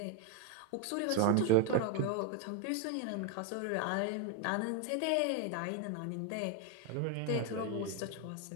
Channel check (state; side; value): different; both; correlation 0.01